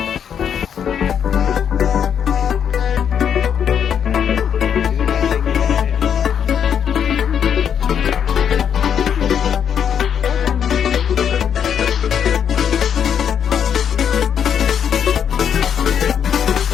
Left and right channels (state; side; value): quieter; right; 8.2 dB